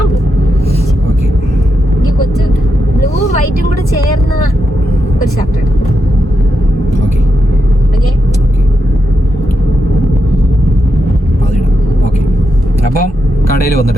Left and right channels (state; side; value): normal; both; correlation 0.84